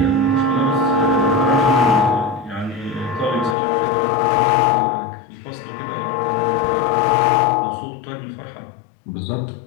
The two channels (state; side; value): drops out; right; at 3.6 s